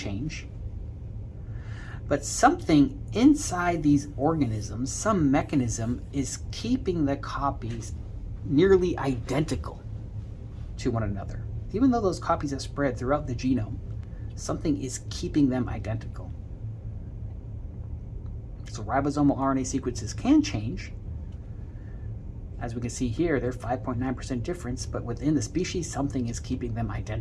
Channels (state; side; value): identical; both; correlation 1.00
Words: But something inside these organisms, some mechanism, is keeping the copies nearly identical to one another. Even though those copies are spread throughout the genome, something is keeping them identical. So ribosomal RNA sequences can change. As we can see here, they're 5.9% difference, but within the species, something is keeping them